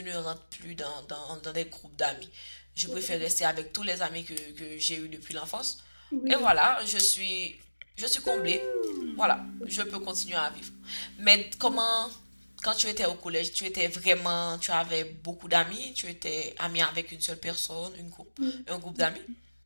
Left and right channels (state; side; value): inverted; both; correlation -1.00